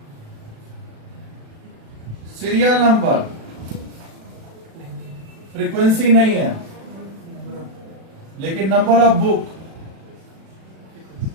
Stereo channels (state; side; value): late; left; 36 ms